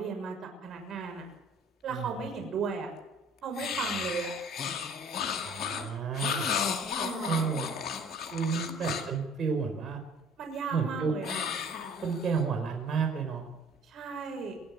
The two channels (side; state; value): both; normal; correlation 0.51